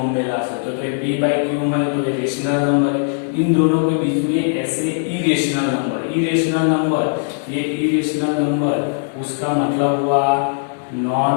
में ला सकते हो। तो ये p बाई क्यू है तो ये रेशनल नंबर है। इन दोनों के बीच में ऐसे इरेशनल नंबर, ये इरेशनल नंबर उसका मतलब हुआ non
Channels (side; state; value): right; silent; digital silence